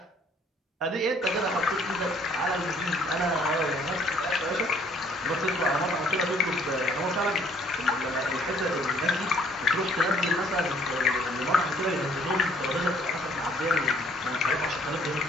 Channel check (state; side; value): normal; both; correlation 0.61